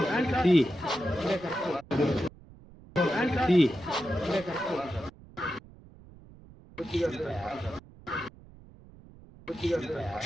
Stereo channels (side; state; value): right; noise; rumble, 21 dB below the sound